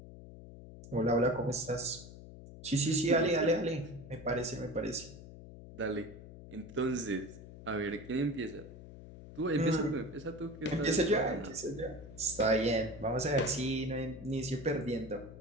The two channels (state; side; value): noise; left; hum, 15 dB below the sound